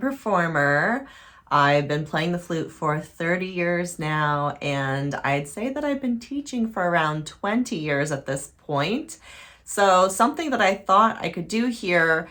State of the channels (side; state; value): both; identical; correlation 1.00